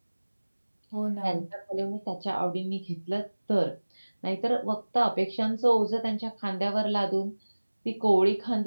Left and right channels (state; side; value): inverted; both; correlation -1.00